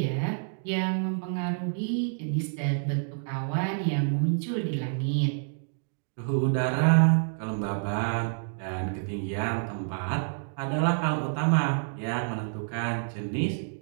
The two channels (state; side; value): silent; left; digital silence